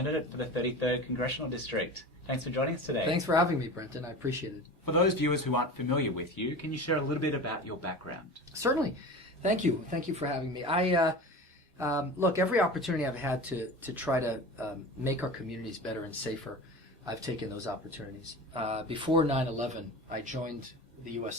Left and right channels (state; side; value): normal; both; correlation 0.33